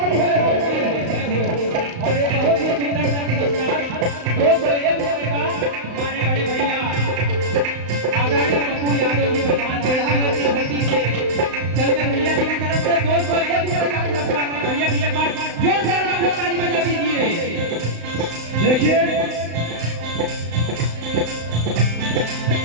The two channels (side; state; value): left; late; 35 ms